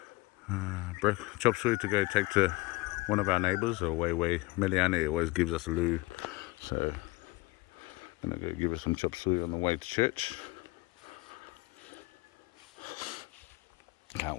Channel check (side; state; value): right; quieter; 22.9 dB